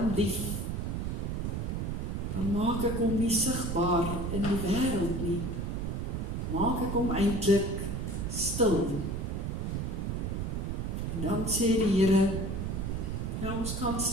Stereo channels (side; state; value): right; noise; rumble, 2 dB below the sound